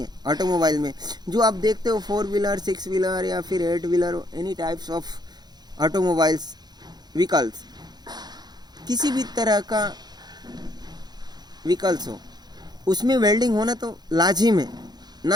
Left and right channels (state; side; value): late; left; 0.20 ms